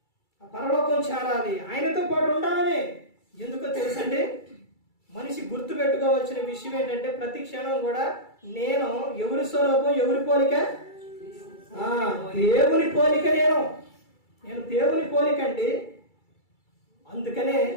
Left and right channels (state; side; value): late; right; 2.3 ms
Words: పరలోకం చేరాలి, ఆయనతో పాటు ఉండాలని. ఎందుకో తెలుసండి, మనిషి గుర్తు పెట్టుకోవాల్సిన విషయం ఏంటంటే ప్రతి క్షణం కూడా నేను ఎవరి స్వరూపం, ఎవరి పోలిక? దేవుని పోలిక. నేను దేవుని పోలిక అండి. అందుకనే